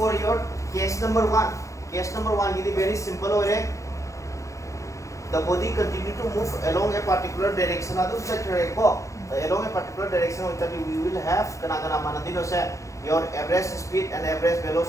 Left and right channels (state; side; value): late; right; 0.15 ms